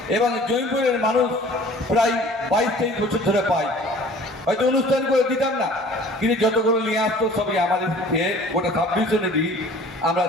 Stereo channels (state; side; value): normal; both; correlation 0.48